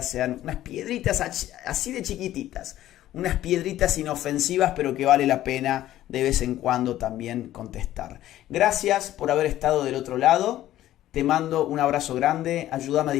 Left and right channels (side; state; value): right; quieter; 13.7 dB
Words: sean unas piedritas así de chiquititas, unas piedritas inofensivas, pero que vale la pena de vez en cuando también contestar. Gracias por haber estado del otro lado, te mando un abrazo grande, ayúdame a